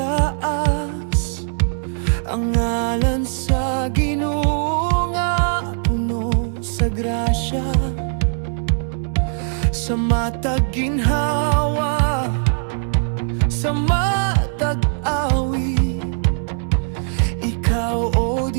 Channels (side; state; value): left; silent; digital silence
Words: ang ngalan sa Ginoo nga puno sa grasya, sa matag ginhawa, sa matag awi. Ikaw, O